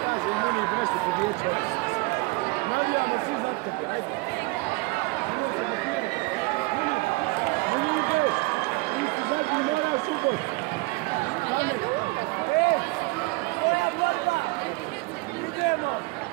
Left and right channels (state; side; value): quieter; left; 24.6 dB